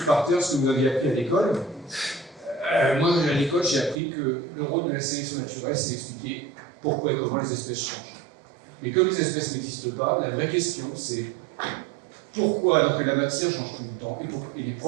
par terre ce que vous aviez appris à l'école. Moi, à l'école, j'ai appris que le rôle de la sélection naturelle, c'est d'expliquer pourquoi et comment les espèces changent. Et comme les espèces n'existent pas, la vraie question, c'est pourquoi, alors que la matière change tout le temps, et les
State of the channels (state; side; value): drops out; left; at 4.0 s